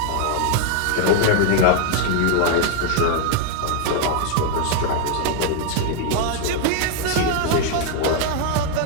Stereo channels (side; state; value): both; different; correlation 0.00